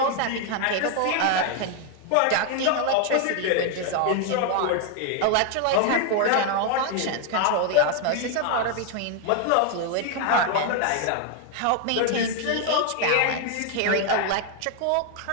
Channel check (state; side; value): different; both; correlation 0.01